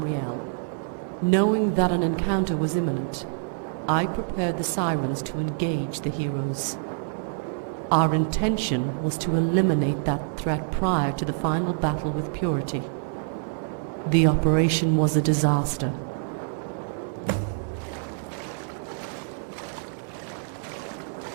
Knowing that an encounter was imminent, I prepared the sirens to engage the heroes. Our intention was to eliminate that threat prior to the final battle with Purity. The operation was a disaster.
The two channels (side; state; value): left; silent; digital silence